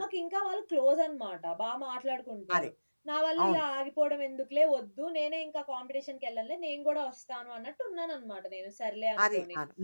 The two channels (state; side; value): inverted; both; correlation -1.00